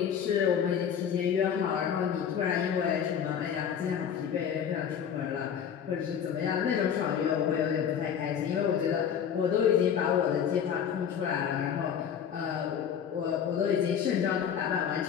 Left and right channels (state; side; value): quieter; right; 8.2 dB